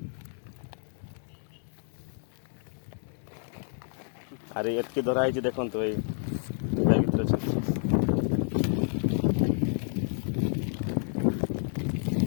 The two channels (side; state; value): right; silent; 58 dB below the other